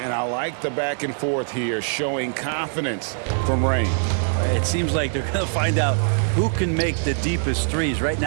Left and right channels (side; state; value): left; silent; digital silence